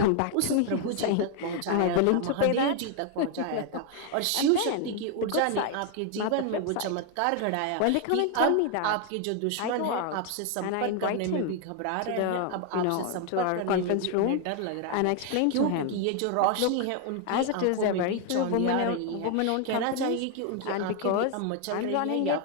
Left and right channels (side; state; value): both; different; correlation 0.00